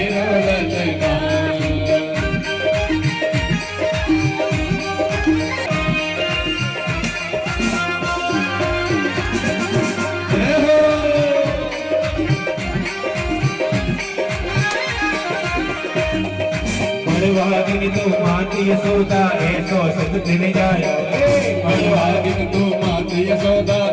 ललना। बड़वागिन तो माती यशोदा ऐसो सुख दिन जायो। बड़वागिन तो माती यशोदा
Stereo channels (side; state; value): both; identical; correlation 1.00